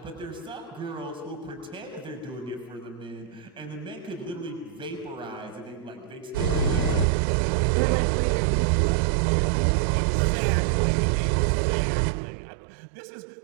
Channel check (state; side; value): drops out; left; at 7.1 s